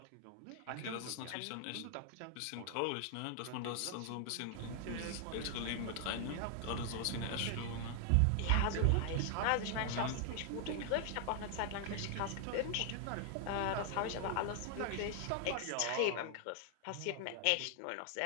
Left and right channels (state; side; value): different; both; correlation 0.00